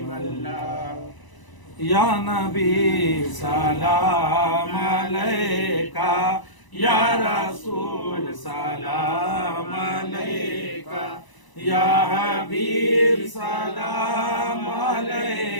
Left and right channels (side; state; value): right; late; 1.0 ms